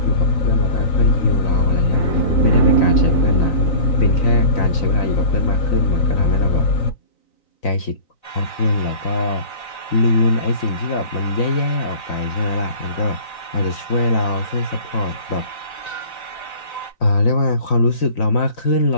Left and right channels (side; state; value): right; late; 3.9 ms